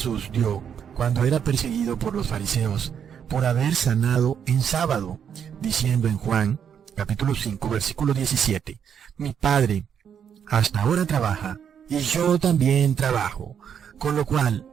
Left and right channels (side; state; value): left; quieter; 8.1 dB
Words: dio cuando era perseguido por los fariseos por haber sanado en sábado, diciendo en Juan, capítulo 5, versículo 17, mi Padre hasta ahora trabaja, y yo también trabajo, con lo cual